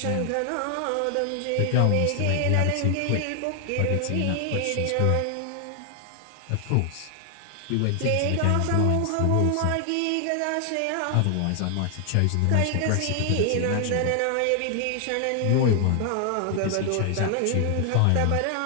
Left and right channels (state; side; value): different; both; correlation 0.00